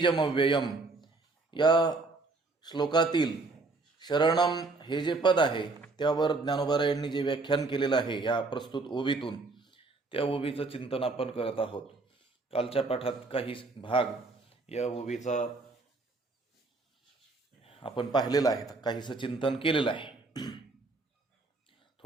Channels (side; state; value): left; quieter; 3.6 dB